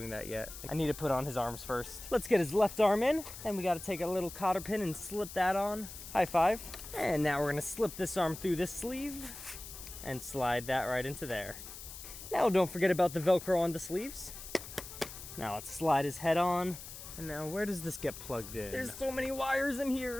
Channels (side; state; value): left; noise; hiss, 12 dB below the sound